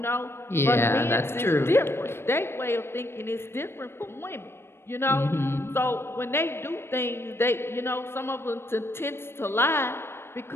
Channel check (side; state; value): right; late; 0.12 ms